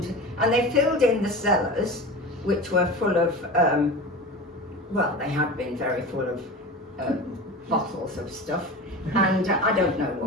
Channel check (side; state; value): both; normal; correlation 0.31